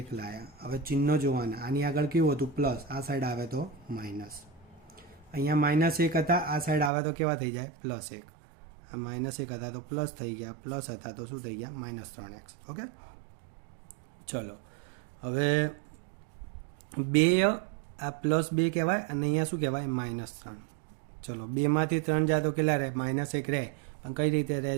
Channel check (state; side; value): drops out; left; at 6.9 s